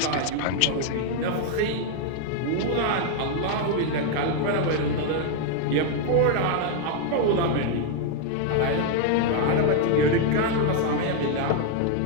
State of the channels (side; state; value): both; different; correlation 0.00